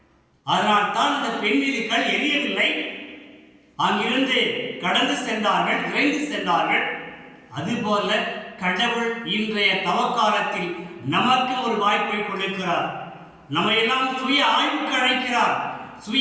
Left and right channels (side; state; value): both; identical; correlation 1.00